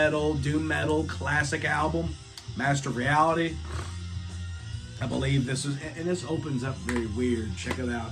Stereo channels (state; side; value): identical; both; correlation 1.00